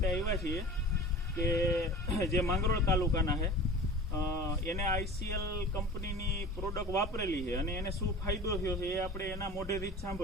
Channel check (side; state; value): both; normal; correlation 0.38